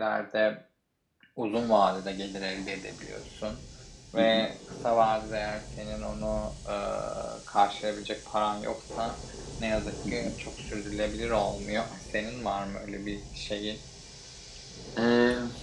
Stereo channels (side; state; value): both; identical; correlation 1.00